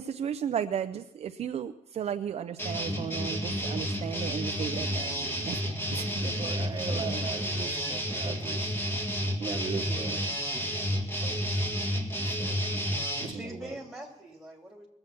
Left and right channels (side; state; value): both; normal; correlation 0.40